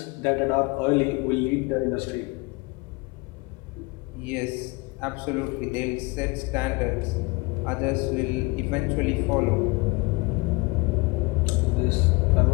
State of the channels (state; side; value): quieter; right; 26.0 dB